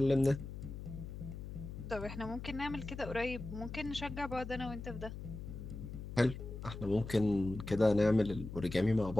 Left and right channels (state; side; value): noise; left; hum, 9 dB below the sound